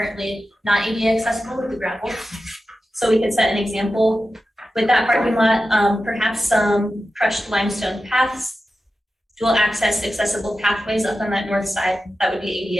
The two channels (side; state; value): both; normal; correlation 0.92